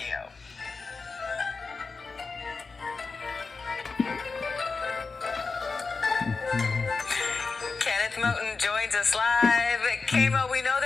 Kenneth Moten joins us live. Keimo, we know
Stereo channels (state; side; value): quieter; right; 4.3 dB